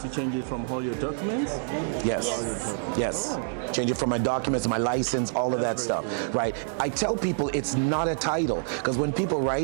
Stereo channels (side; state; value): left; silent; 60 dB below the other